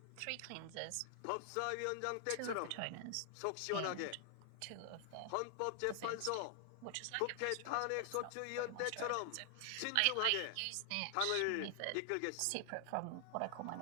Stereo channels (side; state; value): both; different; correlation 0.00